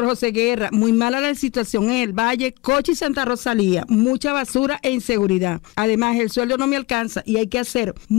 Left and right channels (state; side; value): quieter; right; 21.8 dB